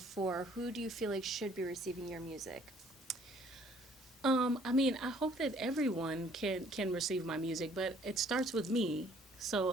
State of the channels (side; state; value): both; normal; correlation 0.60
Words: Who do you feel like should be receiving your music? I mean, I hope that everyone can receive my music, but it starts with me.